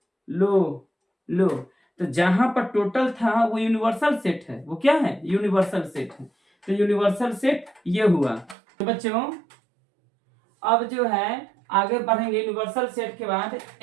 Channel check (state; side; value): drops out; left; at 8.6 s